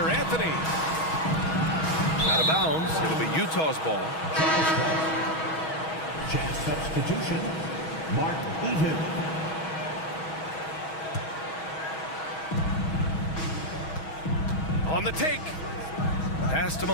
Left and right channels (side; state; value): right; late; 6.2 ms